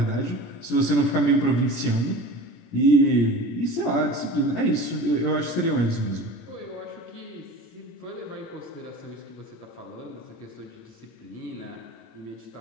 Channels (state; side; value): late; right; 17 ms